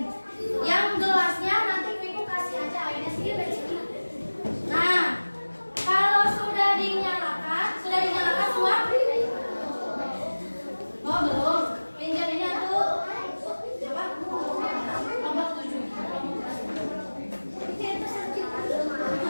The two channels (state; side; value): inverted; both; correlation -1.00